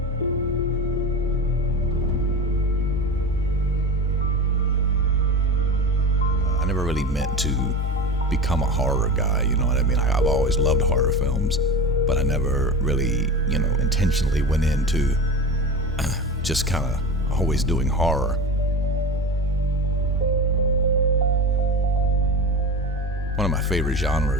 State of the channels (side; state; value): both; normal; correlation 0.28